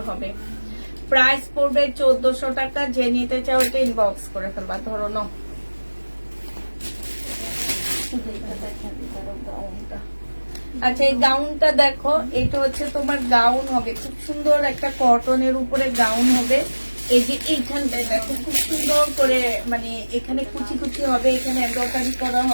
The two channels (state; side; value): inverted; both; correlation -1.00